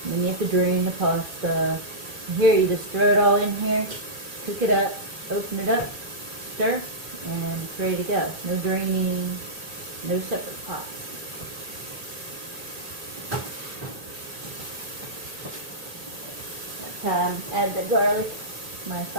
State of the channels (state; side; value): late; left; 2.0 ms